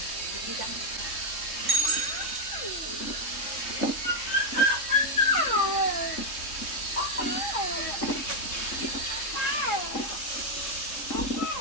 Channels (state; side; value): late; right; 3.6 ms